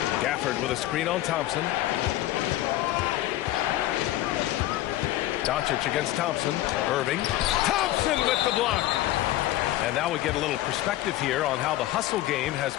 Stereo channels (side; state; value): right; quieter; 15.1 dB